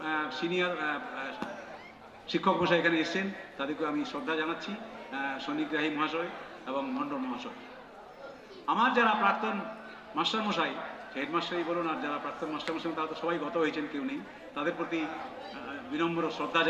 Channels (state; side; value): identical; both; correlation 1.00